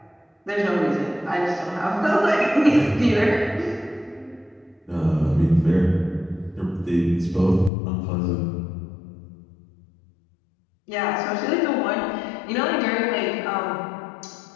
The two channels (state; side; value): drops out; right; at 7.7 s